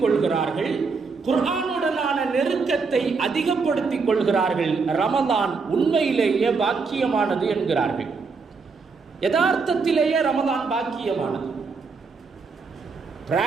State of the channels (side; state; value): left; quieter; 4.7 dB